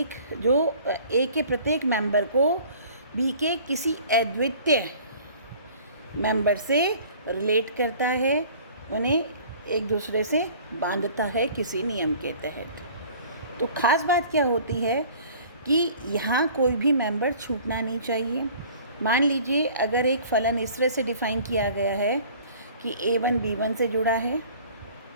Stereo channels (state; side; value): inverted; both; correlation -0.49